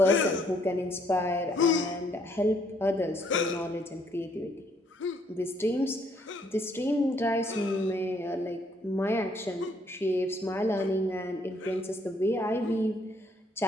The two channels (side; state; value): both; normal; correlation 0.68